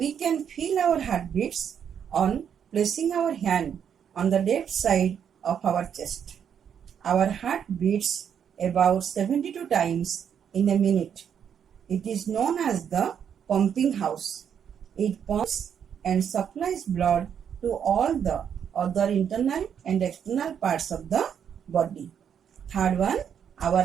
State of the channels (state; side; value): quieter; left; 8.2 dB